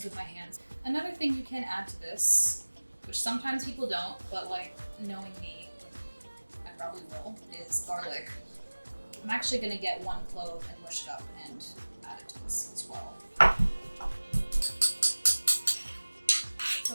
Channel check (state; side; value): inverted; both; correlation -1.00